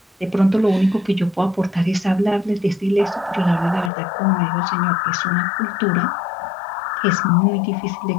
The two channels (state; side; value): drops out; right; at 3.9 s